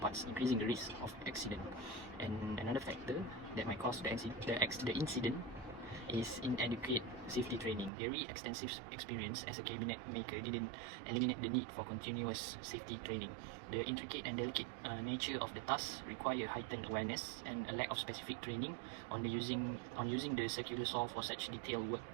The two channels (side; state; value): left; drops out; at 7.9 s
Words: increasing the risk of accident. And another factor that might cause the incident is inadequate safety training. Very extensive experience as a cabinet maker didn't eliminate the need for continuous safety training. The intricate and delicate nature of the task require heightened awareness, and a lack of specific training on using the circular saw for such detailed work